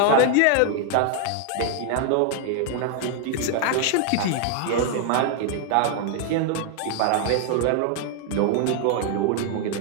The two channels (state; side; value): different; both; correlation 0.00